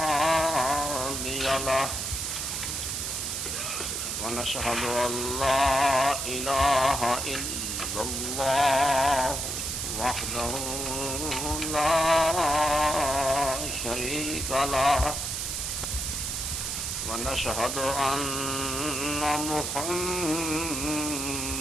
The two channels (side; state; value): right; noise; hiss, 2 dB below the sound